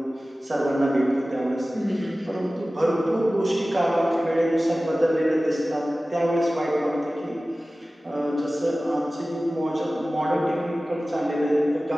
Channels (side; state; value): both; normal; correlation 0.97